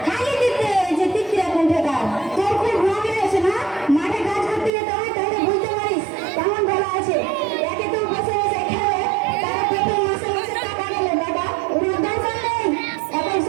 খালি দিতে যে তিত্রা কোন ঠেকা তোর খুব রোগ আছে না মাঠে কাজ করতে যেতে হয় তাহলে বুঝতে পারিস কেমন ভালো আছে একে তো বসে বসে খেলে তার পেটে মাসে মাসে টাকা গেলে বাবা ওর দরকার নেই এখন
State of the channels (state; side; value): drops out; left; at 4.7 s